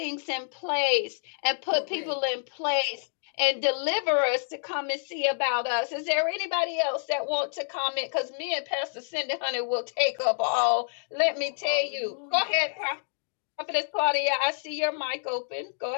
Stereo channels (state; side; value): silent; right; digital silence